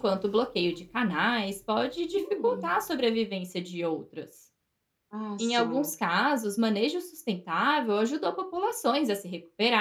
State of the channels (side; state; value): both; identical; correlation 1.00